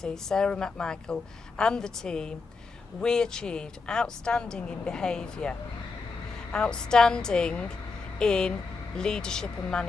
Sarah McMichael, and the team, we achieved outstanding in behaviour, outstanding in leadership and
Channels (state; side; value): quieter; right; 4.4 dB